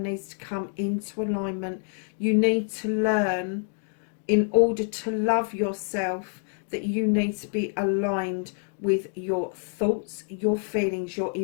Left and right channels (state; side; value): silent; right; 60 dB below the other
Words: needs to come into alignment. You need to learn, in order to love yourself, that you need to be aligned with your thoughts, your feelings, your